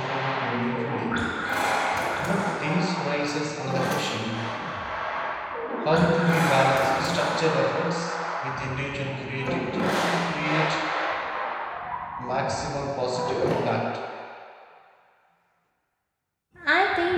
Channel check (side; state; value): both; identical; correlation 1.00